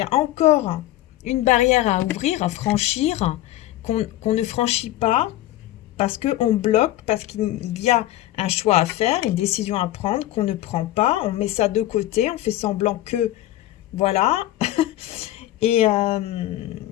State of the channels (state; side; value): quieter; right; 14.8 dB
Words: a encore une barrière à ouvrir, à franchir, qu'on ne franchit pas parce qu'on bloque, parce qu'il y a un choix à faire, une décision à prendre qu'on ne prend pas, on met ça de côté, on fait semblant que, voilà, et, euh,